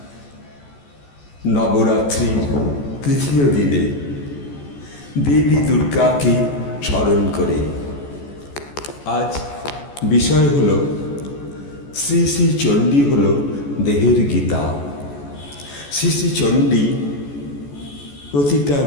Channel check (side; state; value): right; late; 14 ms